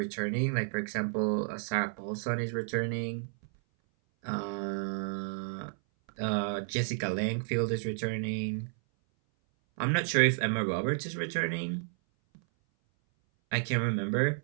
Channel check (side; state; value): left; silent; 57 dB below the other